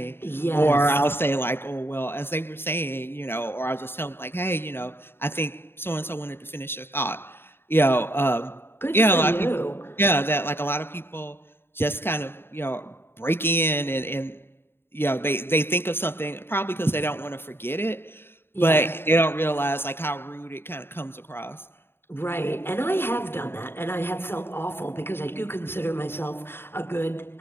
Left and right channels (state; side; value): late; right; 0.11 ms